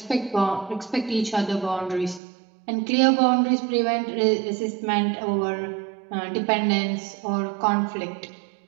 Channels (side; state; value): left; drops out; at 2.2 s